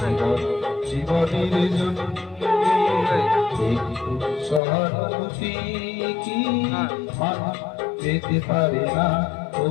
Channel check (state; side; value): drops out; right; at 4.6 s